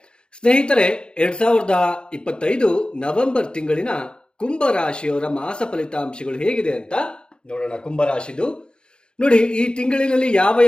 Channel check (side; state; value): right; late; 0.051 ms